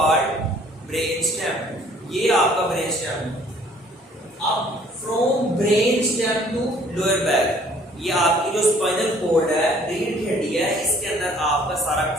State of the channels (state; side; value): normal; both; correlation 0.57